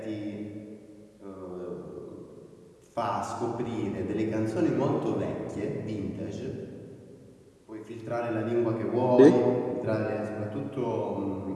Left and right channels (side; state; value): both; identical; correlation 1.00